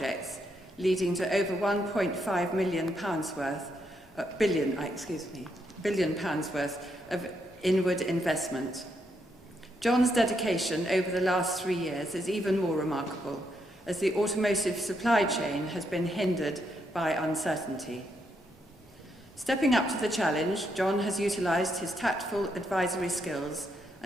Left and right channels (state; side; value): normal; both; correlation 0.78